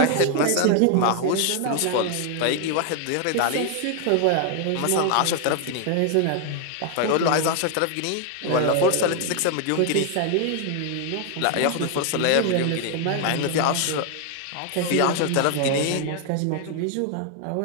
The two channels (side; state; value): both; different; correlation 0.00